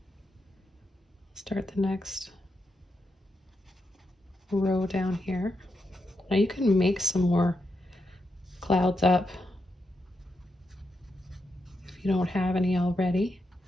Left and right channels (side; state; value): both; normal; correlation 0.84